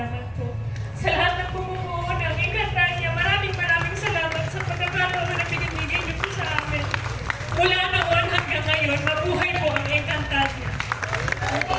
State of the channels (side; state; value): both; identical; correlation 1.00